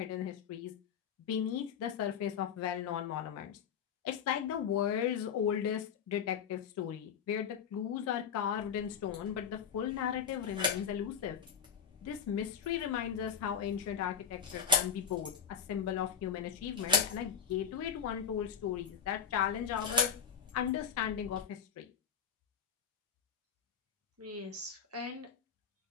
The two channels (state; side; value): quieter; right; 6.9 dB